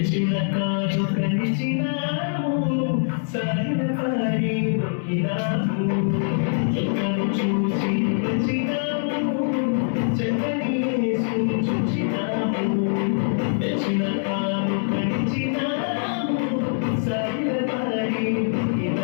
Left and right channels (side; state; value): right; silent; 63 dB below the other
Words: కాదు కలిచినాము, సాగిన పారి మొక్కినాము, చుక్కను చూసి వచ్చినాము, చక్కని యేసుని చూచినాము, తెచ్చిన కాదు కలిచినాము, సాగిన పారి